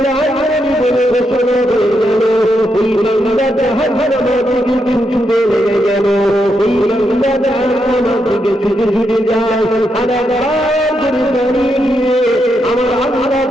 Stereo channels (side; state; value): both; normal; correlation 0.82